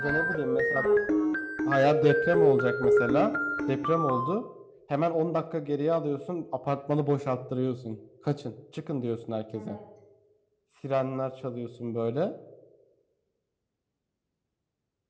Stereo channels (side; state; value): both; identical; correlation 1.00